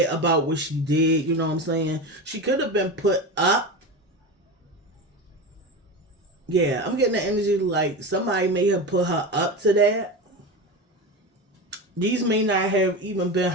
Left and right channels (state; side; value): normal; both; correlation 0.23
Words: about what she did, you know what I'm saying? She could have been put up. Yeah, I'm getting the energy like somebody may have put her up to that. These may not have even been